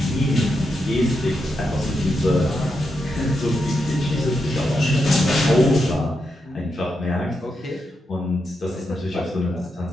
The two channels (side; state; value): both; normal; correlation 0.85